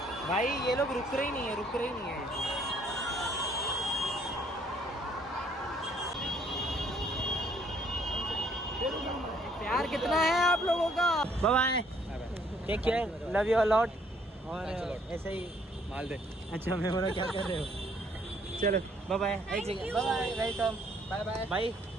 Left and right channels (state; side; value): normal; both; correlation 0.64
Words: भाई ये लोग रुक रहे ही नहीं है प्यार कितना है आप लोगों का। Bye take care, love you a lot. और ऐसे ही माल दे। अच्छा मैं बोला क्या कर रहे हो। चलो bye bye, bye welcome, bye bye भाई